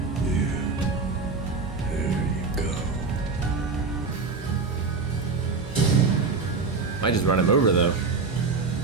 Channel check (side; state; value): left; quieter; 4.4 dB